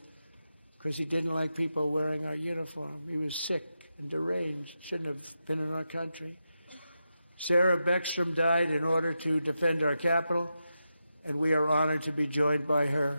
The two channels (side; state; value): both; inverted; correlation -0.88